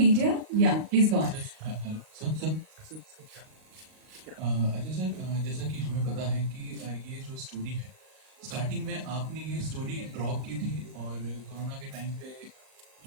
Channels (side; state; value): left; late; 38 ms